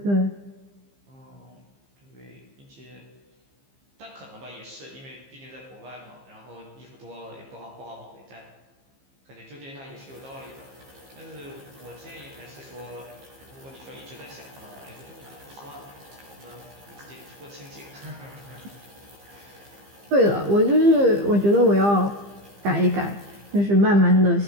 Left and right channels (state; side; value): late; left; 15 ms